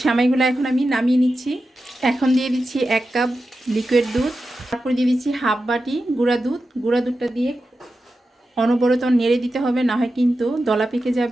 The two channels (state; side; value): normal; both; correlation 0.91